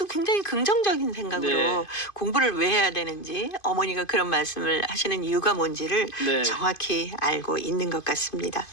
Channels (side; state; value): right; late; 2.5 ms